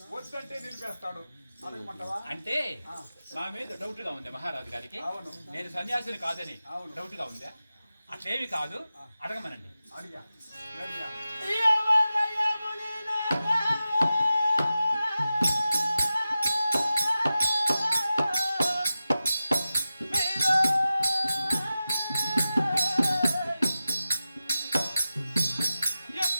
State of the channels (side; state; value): both; inverted; correlation -0.93